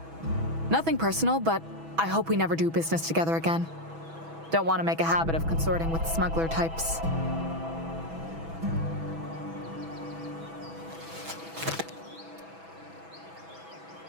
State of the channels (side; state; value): left; late; 6.1 ms